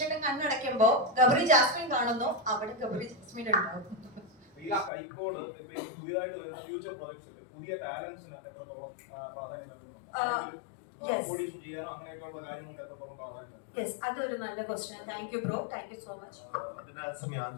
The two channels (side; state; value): right; drops out; at 4.9 s